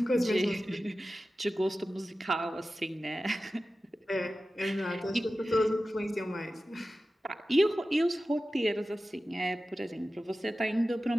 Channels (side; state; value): both; normal; correlation 0.95